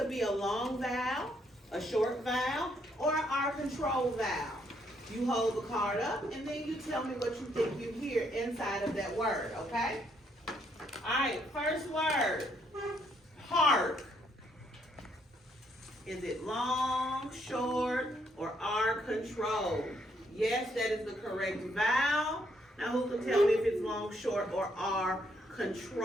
be a long vowel, a short vowel, or our control vowel. You hold the card up and then you tell me what you think you hear inside of that word, okay? All right, first word, hark. Is it long, short, or R control? Yes, that is the correct vowel. Now who can tell me if it's long, short, or R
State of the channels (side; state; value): both; normal; correlation 0.72